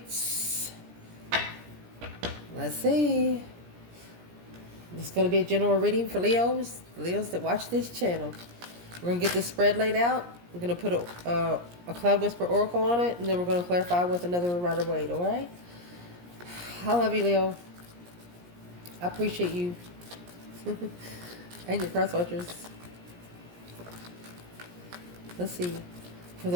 Let's see. It's going to be a general reading for Leos that watch this channel. We're going to get this spread laid out. We're going to put a Cloud Whisper Oracle on it, and then we're going to clarify with another Rider-Waite, alright? I love you, Leo. I appreciate you. And your cross watchers. Let's see. For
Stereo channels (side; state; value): left; late; 17 ms